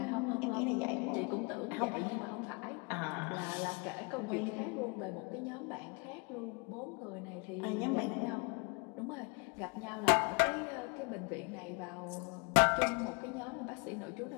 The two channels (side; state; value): right; quieter; 32.8 dB